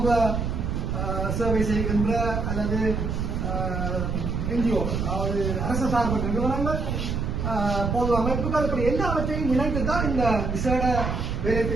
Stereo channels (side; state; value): right; noise; rumble, 1 dB below the sound